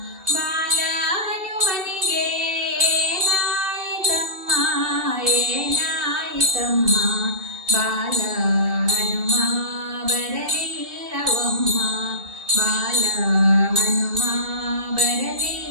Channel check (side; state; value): left; late; 2.6 ms